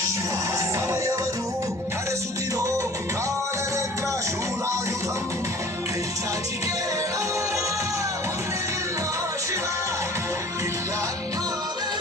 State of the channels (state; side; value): normal; both; correlation 0.47